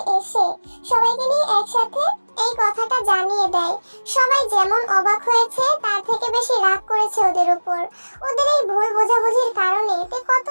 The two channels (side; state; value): both; inverted; correlation -1.00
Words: এসে সবাইকে নিয়ে একসাথে এই কথাটা জানিয়ে দেয়। সবাই যেমন অবাক হয়েছে তার থেকে বেশি রাগ করেছে ওদের উপর। ওদের এই ভুল বোঝাবুঝির কারণে তে